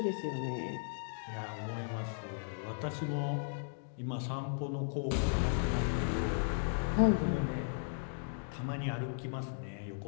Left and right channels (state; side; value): silent; right; digital silence